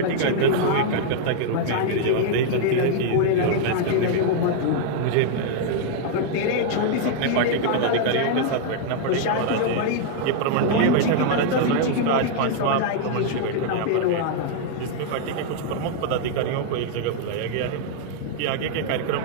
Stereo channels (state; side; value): different; both; correlation -0.01